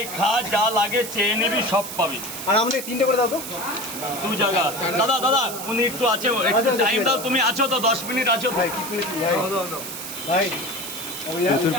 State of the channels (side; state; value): right; noise; hiss, 8 dB below the sound